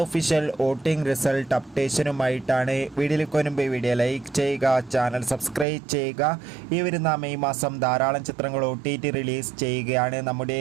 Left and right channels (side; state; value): left; drops out; at 5.7 s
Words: വോട്ടിംഗ് റിസൾട്ട് അപ്ഡേഷനുമായിട്ടാണ്. വീഡിയോയിലേക്ക് വരുമ്പോൾ വീഡിയോ ലൈക്ക് ചെയ്യുക, ചാനൽ സബ്സ്ക്രൈബ് ചെയ്യുക. ഈ വരുന്ന മെയ് മാസം ധാരാളം ചിത്രങ്ങൾ OTT റിലീസ് ചെയ്യുകയാണ്. നമ്മുടെ